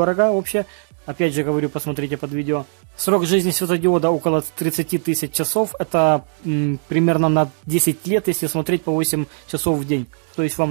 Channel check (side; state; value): left; silent; digital silence